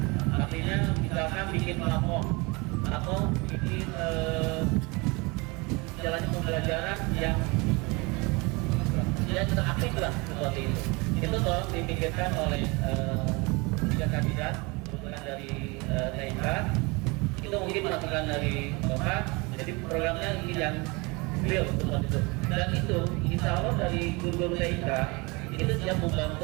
Artinya misalkan bikin platform atau bikin jalannya pembelajaran yang interaktif lah seperti itu. Itu tolong dipikirkan oleh tiga kandidat kebetulan dari TIK. Itu mungkin masukan dari Bapak. Jadi programnya ini yang real seperti itu. Dan itu insya Allah dari guru-guru TIK itu siap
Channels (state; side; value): quieter; left; 27.0 dB